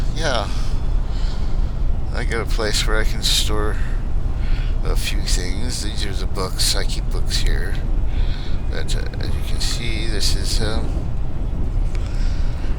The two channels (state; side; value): identical; both; correlation 1.00